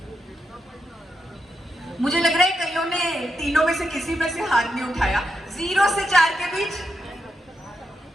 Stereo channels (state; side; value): normal; both; correlation 0.84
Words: मुझे लग रहा है कईयों ने तीनों में से किसी में से हाथ नहीं उठाया। 0 से 4 के बीच,